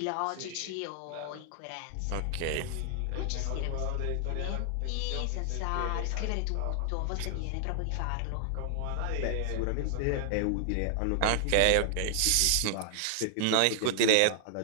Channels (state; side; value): different; both; correlation 0.00